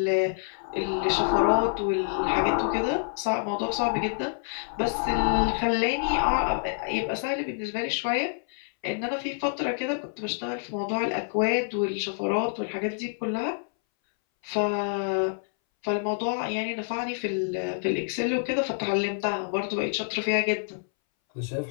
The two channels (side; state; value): right; silent; 60 dB below the other